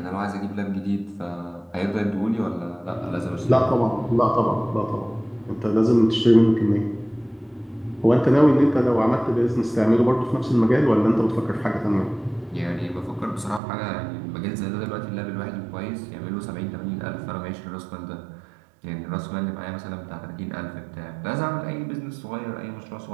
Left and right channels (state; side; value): drops out; left; at 13.6 s